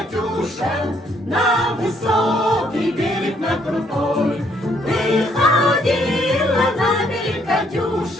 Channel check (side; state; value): both; normal; correlation 0.69